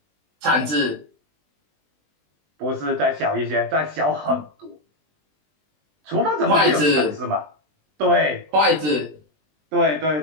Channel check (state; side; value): late; left; 20 ms